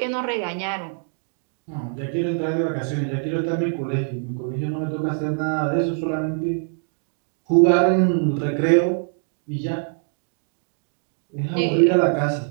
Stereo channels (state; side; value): silent; left; 63 dB below the other